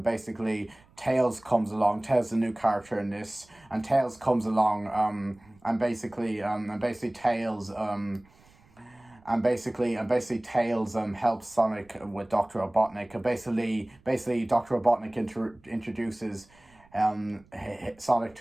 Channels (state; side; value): noise; right; rumble, 29 dB below the sound